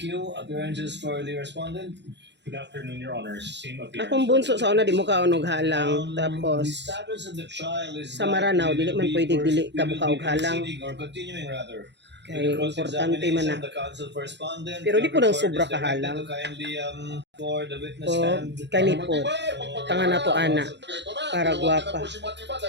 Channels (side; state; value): left; late; 0.51 ms